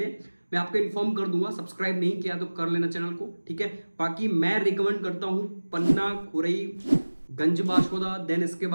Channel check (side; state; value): both; inverted; correlation -1.00